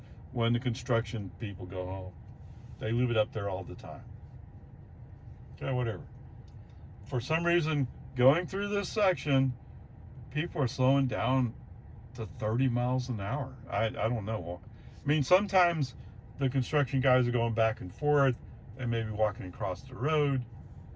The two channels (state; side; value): identical; both; correlation 1.00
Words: when the construction people go home. They leave it up there all the time. Okay, whatever. For some reason, going through this section, people are slowing down to 30 miles an hour. I don't know. I mean, sometimes the construction guys are going back and forth. They may be walking across the road.